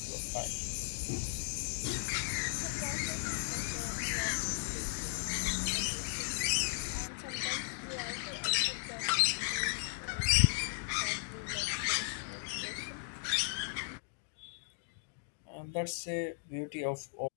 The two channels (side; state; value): right; silent; digital silence